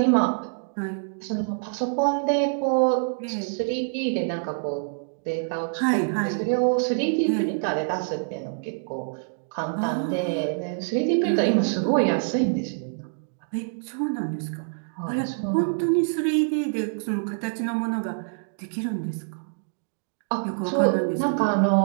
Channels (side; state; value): left; silent; digital silence